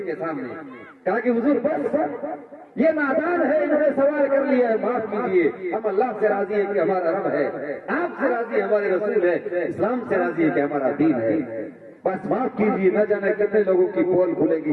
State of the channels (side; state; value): both; identical; correlation 1.00